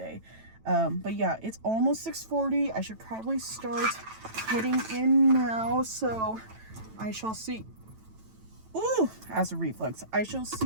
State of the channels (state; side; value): late; left; 9.1 ms